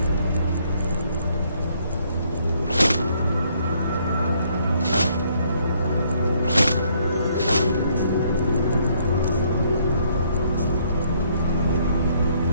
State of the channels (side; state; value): both; inverted; correlation -0.67